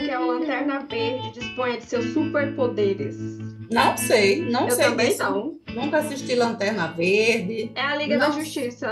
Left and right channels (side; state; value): both; identical; correlation 1.00